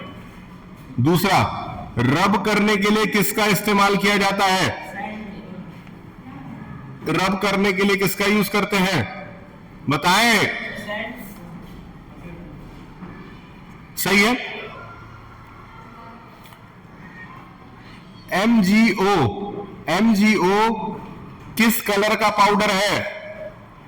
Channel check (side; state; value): both; identical; correlation 1.00